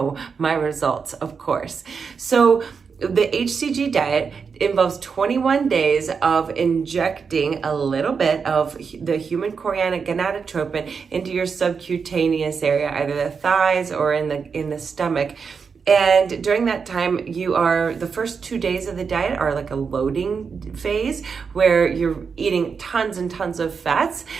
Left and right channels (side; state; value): left; quieter; 5.8 dB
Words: my results, of course. So the HCG diet involves 21 days of injecting a little bit of the human chorionic gonadotropin into your subcutaneous area, either the thighs or in the stomach. And during that time, the first 2 days of the diet are like a loading phase where you're eating tons and tons of fats